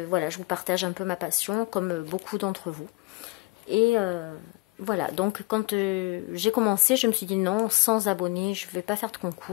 voilà, je vous partage un peu ma passion comme beaucoup d'entre vous. Et voilà, donc quand j'ai commencé, je me suis dit non, 100 abonnés, je ne vais pas faire de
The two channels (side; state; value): right; quieter; 23.8 dB